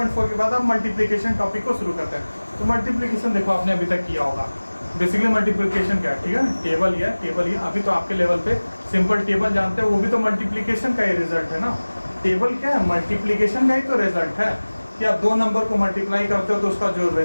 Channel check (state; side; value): inverted; both; correlation -1.00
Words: के बाद हम मल्टीप्लिकेशन टॉपिक को शुरू करते हैं। तो मल्टीप्लिकेशन देखो आपने अभी तक किया होगा। बेसिकली मल्टीप्लिकेशन क्या है, ठीक है ना, टेबल ही अभी तो आपके लेवल पे सिंपल टेबल जानते हैं, वो भी तो मल्टीप्लिकेशन का ही रिजल्ट है ना। टेबल क्या है, मल्टीप्लिकेशन का ही तो रिजल्ट है कि आप दो नंबर को मल्टीप्लाई करते हो तो उसका जो